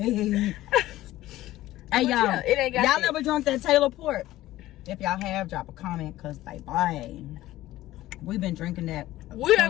Hey, y'all. Yeah, it ain't got y'all that. never drunk that Taylor port? If y'all have, drop a comment. Because, baby, we've been drinking that. We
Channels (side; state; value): right; quieter; 15.7 dB